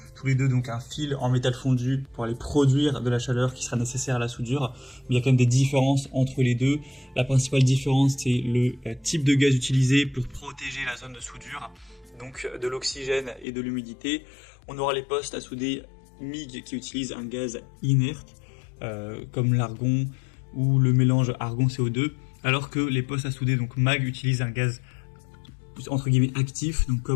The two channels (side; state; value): right; drops out; at 13.5 s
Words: les deux donc un fil en métal fondu pour aller produire de la chaleur qui sera nécessaire à la soudure. Mais il y a quand même des différences entre les deux. La principale différence c'est le type de gaz utilisé pour protéger la zone de soudure, donc de l'oxygène et de l'humidité. On aura les postes à souder MIG qui utilisent un gaz inerte comme l'argon ou le mélange argon-CO2, alors que les postes à souder donc MAG utilisent un gaz entre guillemets actif, donc